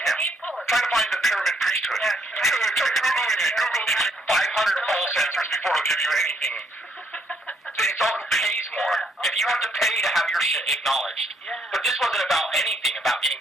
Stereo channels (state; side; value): normal; both; correlation 0.71